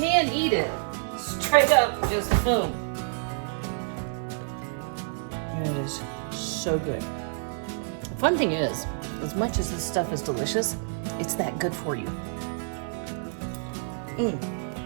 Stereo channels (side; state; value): left; silent; digital silence